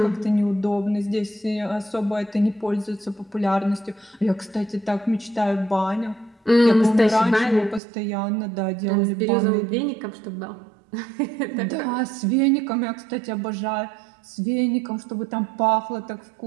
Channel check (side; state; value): left; drops out; at 7.8 s